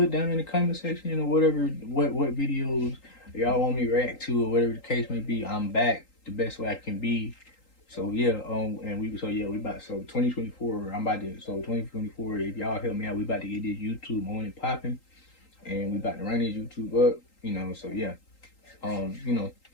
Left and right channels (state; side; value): late; right; 3.8 ms